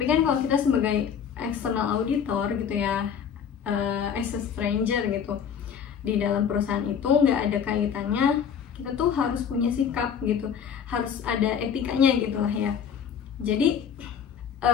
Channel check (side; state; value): right; quieter; 7.7 dB